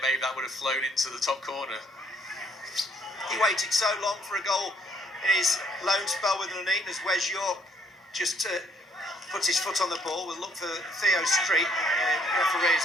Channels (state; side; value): normal; both; correlation 0.67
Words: maybe that would have flown into the top corner. He waited so long for a goal in his loan spell with Nuneaton as Wes York just puts his foot on the ball. We'll look for Theo Street. Referee is